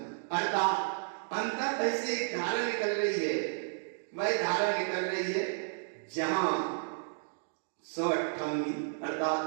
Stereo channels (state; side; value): silent; left; digital silence